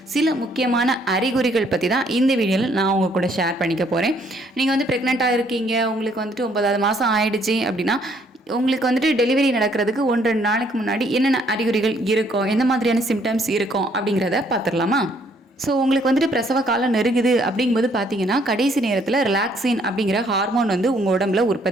சில முக்கியமான அறிகுறிகள் பற்றி தான் இந்த வீடியோவில் நான் உங்கள் கூட ஷேர் பண்ணிக்க போகிறேன். நீங்கள் வந்து ப்ரெக்னெண்ட்டாக இருக்கீங்க, உங்களுக்கு வந்துட்டு 9வது மாதம் ஆயிடுச்சு அப்படின்னா உங்களுக்கு வந்துட்டு டெலிவரி நடக்கிறதுக்கு 1-2 நாளைக்கு முன்னாடி என்னென்ன அறிகுறிகள் இருக்கும், எந்த மாதிரியான சிம்டம்ஸ் இருக்கும் அப்படிங்கிறத பார்த்துடலாமா? ஸோ உங்களுக்கு வந்துட்டு பிரசவ காலம் நெருங்குது அப்படிங்கும்போது பார்த்தீங்கன்னா கடைசி நேரத்தில் ரிலாக்ஸின் அப்படிங்கிற ஹார்மோன் வந்து உங்கள் உடம்புல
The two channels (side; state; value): both; normal; correlation 0.66